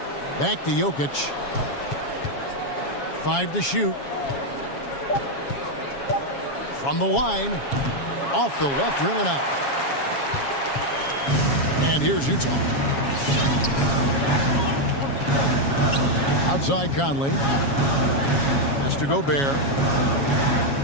Back to Jokic. 5 to shoot. From the line. Off the left rim and out. And here's Utah. Outside Conley. Has to Gobert.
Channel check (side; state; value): right; late; 7.2 ms